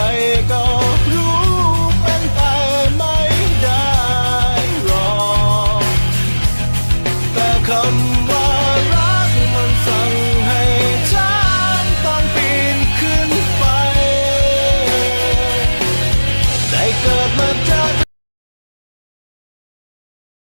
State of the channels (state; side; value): inverted; both; correlation -1.00